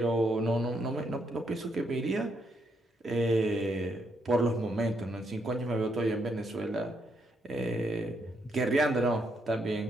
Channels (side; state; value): both; normal; correlation 0.77